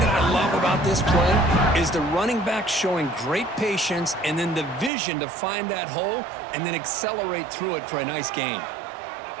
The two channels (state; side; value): drops out; left; at 4.9 s